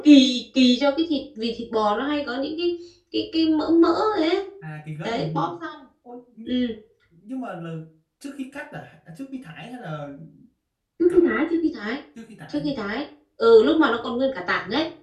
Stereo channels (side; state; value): both; identical; correlation 1.00